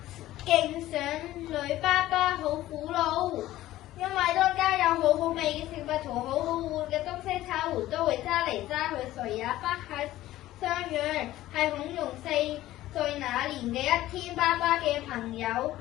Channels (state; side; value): quieter; right; 15.2 dB